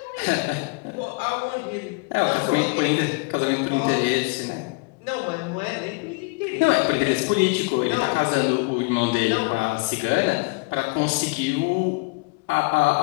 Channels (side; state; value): right; quieter; 27.8 dB